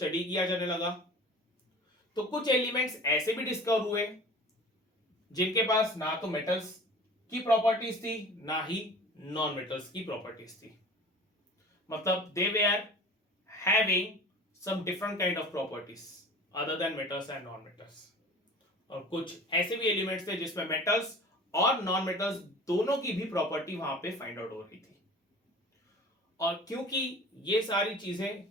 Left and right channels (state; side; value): normal; both; correlation 0.41